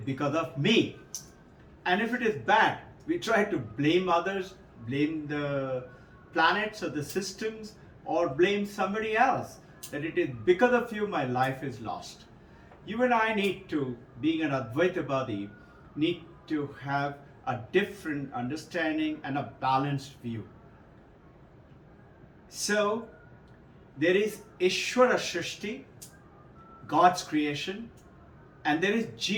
because of me. And if it is bad, we try to blame others, blame the planets or the systems, or blame somebody else, that it is because of you my life is lost. You and I need to, being an Advaitavadi, need to have a different understanding and a balanced view. So, there is Ishvara Shrishti, God's creation, and there is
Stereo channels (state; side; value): identical; both; correlation 1.00